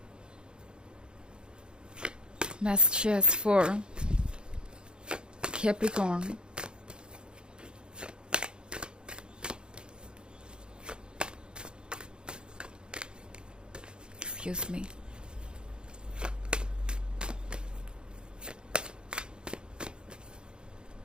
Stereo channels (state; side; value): late; left; 0.050 ms